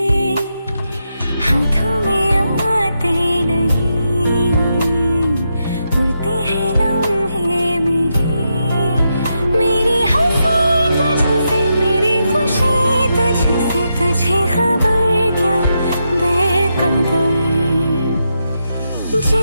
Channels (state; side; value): inverted; both; correlation -0.84